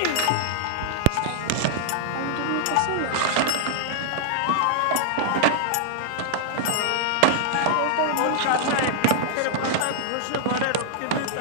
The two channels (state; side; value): different; both; correlation -0.01